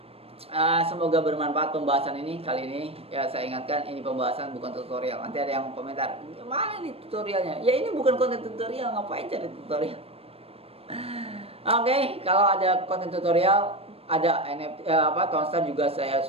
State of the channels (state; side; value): late; left; 0.28 ms